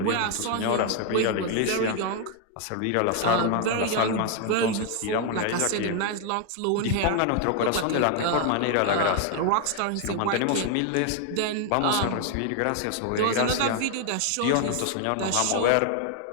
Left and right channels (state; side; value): different; both; correlation 0.00